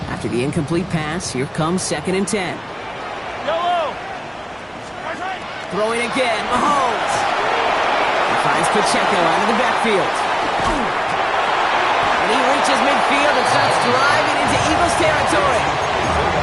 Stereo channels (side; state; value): both; identical; correlation 1.00